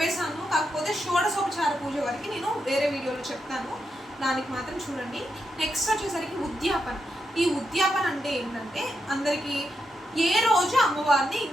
కాకపోతే షోడశోపచార పూజ వరకు నేను వేరే వీడియోలో చెప్తాను, దానికి మాత్రం చూడండి. నెక్స్ట్ వచ్చేసరికి ఉద్యాపన. ఈ ఉద్యాపన అంటే ఏంటంటే అందరికీ ఏ రోజు అమ్మవారిని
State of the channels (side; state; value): both; normal; correlation 0.84